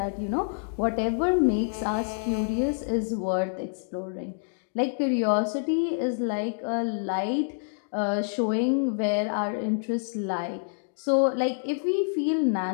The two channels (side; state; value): right; silent; digital silence